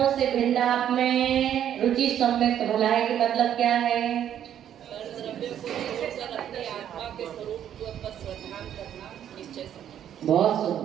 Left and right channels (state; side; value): quieter; left; 10.1 dB